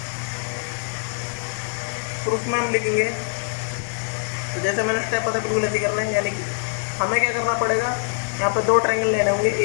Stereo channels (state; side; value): silent; right; 63 dB below the other